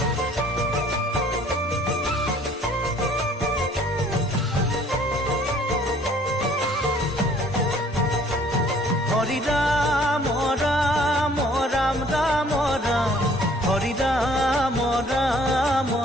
হৰি ৰাম ৰাম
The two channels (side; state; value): both; normal; correlation 0.57